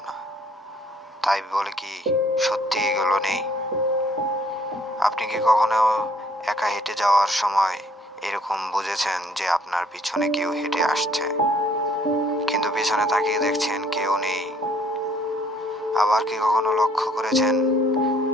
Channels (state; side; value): normal; both; correlation 0.62